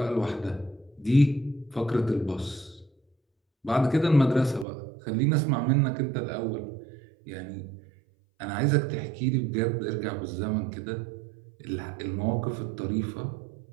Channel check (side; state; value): left; drops out; at 4.7 s